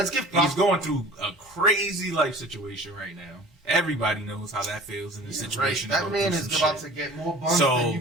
give He's props. going through a crazy life situation right now. Everybody knows how that feels in this Right, situation. that man is about to get more buns than you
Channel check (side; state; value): both; normal; correlation 0.43